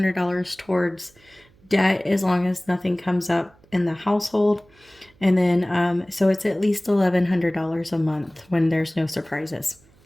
towards debt as long as nothing comes up in the household. And then, so it's at least $1,100 a month when there's no surprises.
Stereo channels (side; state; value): right; noise; hum, 30 dB below the sound